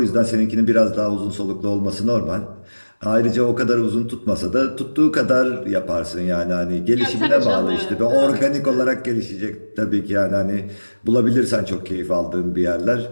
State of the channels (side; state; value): both; inverted; correlation -1.00